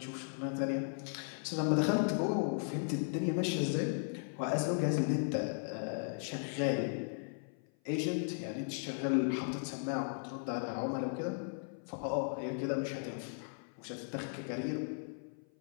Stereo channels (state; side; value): silent; right; 53 dB below the other